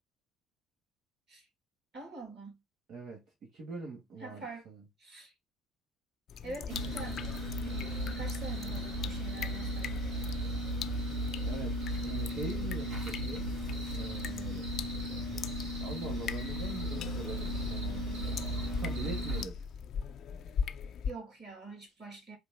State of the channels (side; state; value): both; normal; correlation 0.42